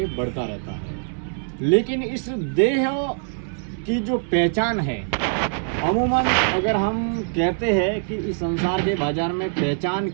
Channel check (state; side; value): silent; left; digital silence